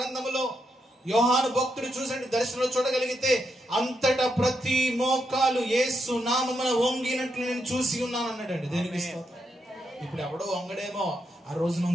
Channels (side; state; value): both; normal; correlation 0.82